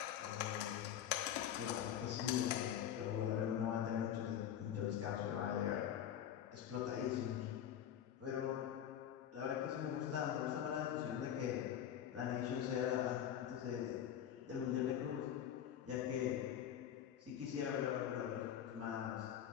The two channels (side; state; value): right; quieter; 10.2 dB